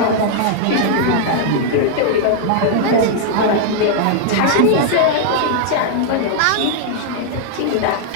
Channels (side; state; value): both; different; correlation -0.01